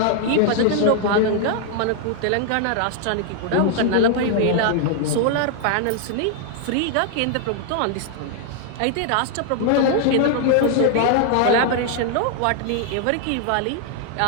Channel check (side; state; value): both; different; correlation 0.00